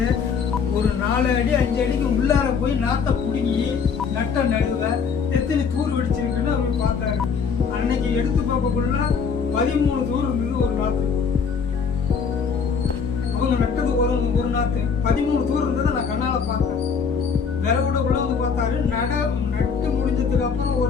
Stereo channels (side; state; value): right; quieter; 6.0 dB